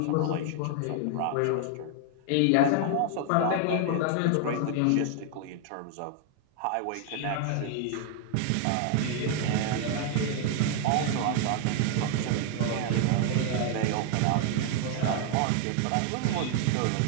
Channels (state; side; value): different; both; correlation 0.00